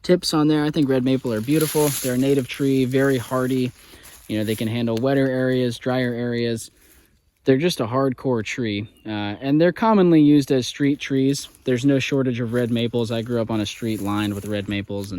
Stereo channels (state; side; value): identical; both; correlation 1.00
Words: tips on there. I think red maple are beautiful. They're a native tree, very hardy. They can handle wetter areas, drier areas. They're just a hardcore tree, and they're commonly used as street trees. There's no shortage of red maples. I grew up on a street lined with red maples,